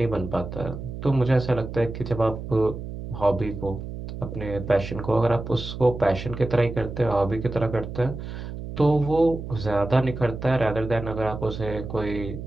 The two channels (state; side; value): noise; right; hum, 8 dB below the sound